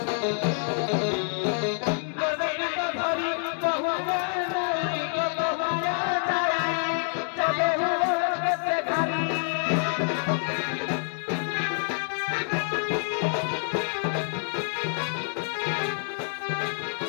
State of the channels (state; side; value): silent; right; 57 dB below the other